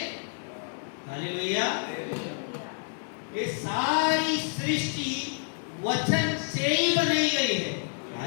हालेलुया। ये सारी सृष्टि वचन से ही बनाई गई है।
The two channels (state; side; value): silent; right; digital silence